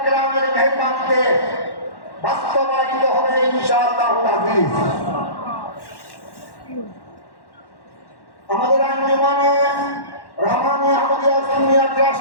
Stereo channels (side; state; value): right; late; 1.1 ms